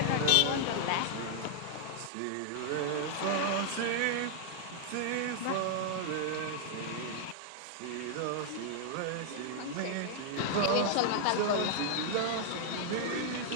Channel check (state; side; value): different; both; correlation 0.00